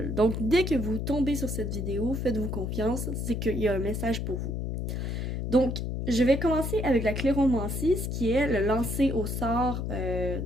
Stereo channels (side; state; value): left; noise; hum, 2 dB below the sound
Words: Donc dès que vous tombez sur cette vidéo, faites-vous confiance, c'est qu'il y a un message pour vous. Donc je vais commencer avec la cléromancie, ce qui est le lancer au sort